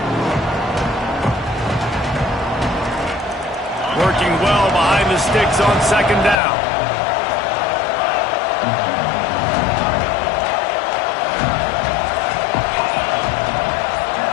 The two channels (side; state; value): right; drops out; at 6.4 s